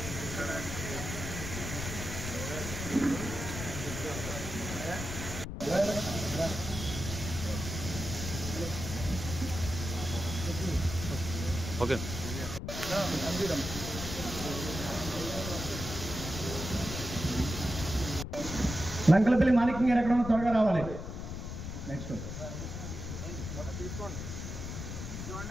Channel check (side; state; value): left; noise; rumble, 6 dB below the sound